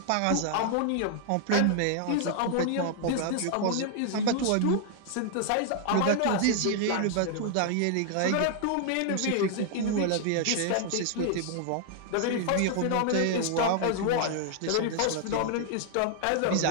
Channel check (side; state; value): both; different; correlation 0.00